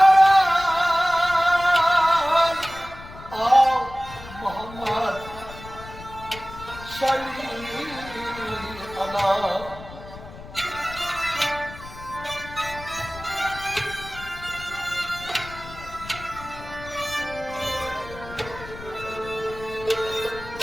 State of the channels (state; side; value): noise; left; rumble, 15 dB below the sound